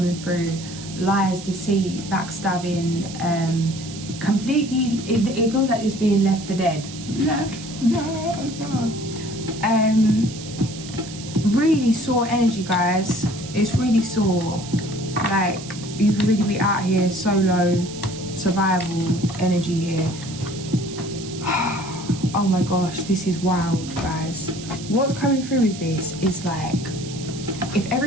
through, lies, deceit, backstabbing, completely, it feels like it's being left for dead. Really sore energy, guys. It's really sore. Like, you could really be out here solo, survival energy here. Oh my gosh, this is wild, guys. What's coming through with this is like, if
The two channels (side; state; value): right; noise; hiss, 14 dB below the sound